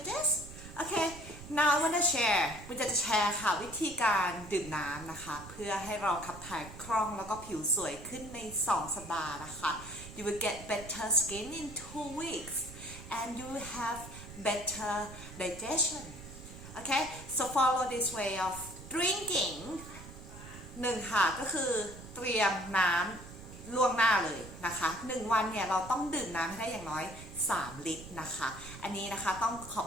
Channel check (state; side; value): noise; right; rumble, 14 dB below the sound